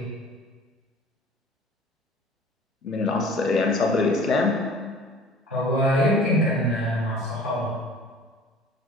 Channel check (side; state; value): both; normal; correlation 0.47